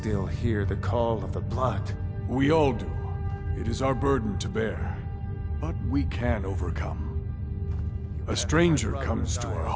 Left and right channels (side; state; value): both; identical; correlation 1.00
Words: hear the call of the blood. We all do. It is our burden to bear. But we can overcome. A stranger comes to our